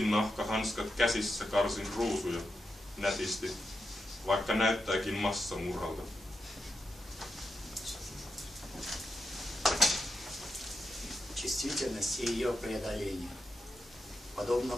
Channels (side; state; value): both; normal; correlation 0.87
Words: käsissä karsin ruusuja nätisti, vaikka näyttääkin massamurhalta. Чувствительность и ее преодоление. Подобно